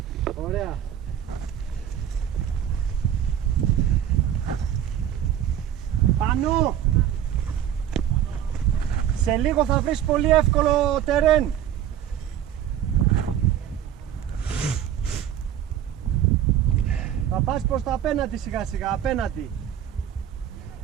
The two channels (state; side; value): quieter; left; 10.3 dB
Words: Ωραία. Πάνω! Σε λίγο θα βρεις πολύ εύκολο τερέν. Θα πας προς τα απέναντι σιγά σιγά, απέναντι.